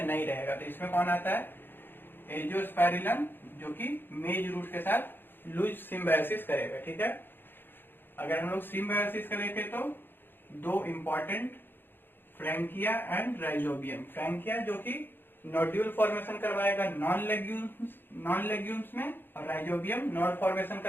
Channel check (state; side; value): late; right; 0.098 ms